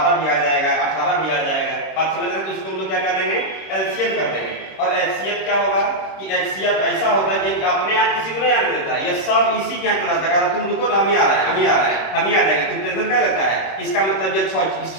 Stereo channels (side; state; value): right; late; 26 ms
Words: भी आ जाएगा, 18 भी आ जाएगा, बात समझ रहे हैं, तो उसको हम लोग क्या कर देंगे, एलसीएम कर देंगे। और एचसीएफ क्या होगा कि एचसीएफ ऐसा होता है कि अपने आप किसी को नहीं आने देता है, ये सब इसी के यहाँ चलाता है, तुम रुको ना, हम ही आ रहा है, हम ही आ रहा है, हम ही आ जाएंगे, तुम टेंशन क्या लेता है। इसका मतलब ये 6 इस